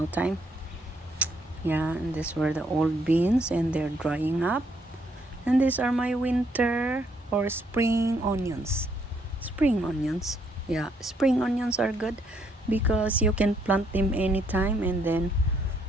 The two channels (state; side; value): normal; both; correlation 0.71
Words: time. Yeah, and these were the old beans, and they're drying up. And these are my winter or spring onions. Spring onions. Yeah, spring onions are good because you can plant them anytime, and then